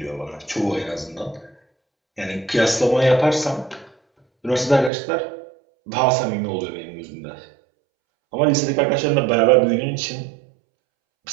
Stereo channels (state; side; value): drops out; left; at 4.9 s